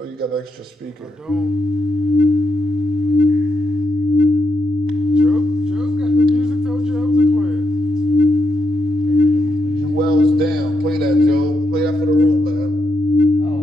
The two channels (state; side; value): normal; both; correlation 0.82